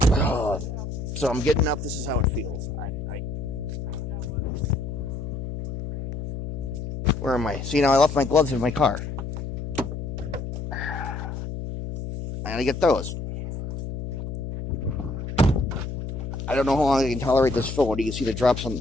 So I'm getting up. This is how it feels. Where am I? See, now I left my gloves in my car. I gotta get those. I don't know how long I can tolerate this phone. You can see the drops coming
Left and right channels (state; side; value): noise; left; hum, 6 dB below the sound